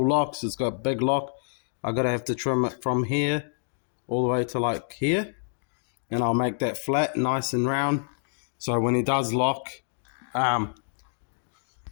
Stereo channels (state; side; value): silent; right; digital silence